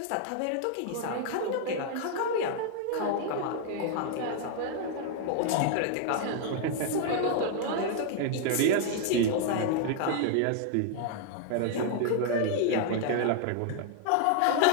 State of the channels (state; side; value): different; both; correlation 0.00